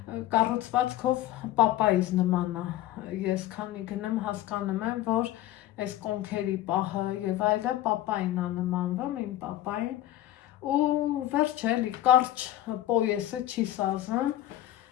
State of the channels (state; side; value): quieter; right; 13.8 dB